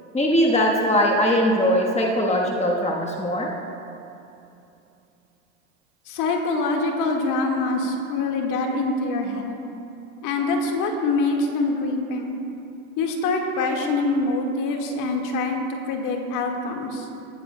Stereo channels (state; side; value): normal; both; correlation 0.22